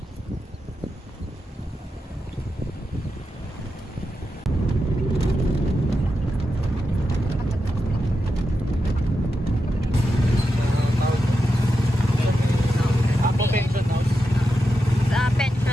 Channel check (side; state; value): both; normal; correlation 0.88